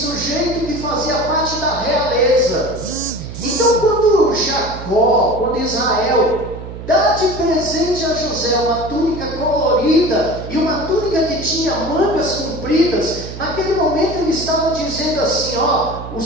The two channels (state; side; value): noise; right; hum, 11 dB below the sound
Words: que fazia parte da realeza. Então quando Jacó, quando Israel dá de presente a José uma túnica colorida e uma túnica que tinha mangas compridas, naquele momento ele estava dizendo assim, ó, o